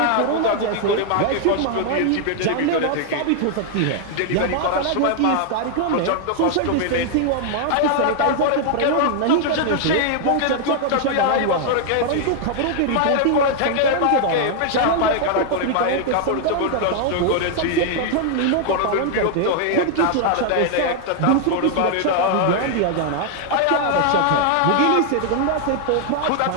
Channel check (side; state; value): both; different; correlation 0.00